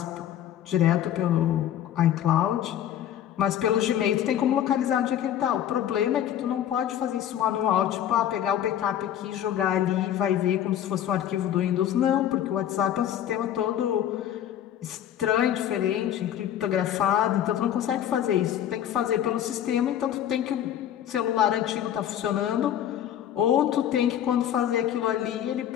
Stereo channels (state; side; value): quieter; right; 10.7 dB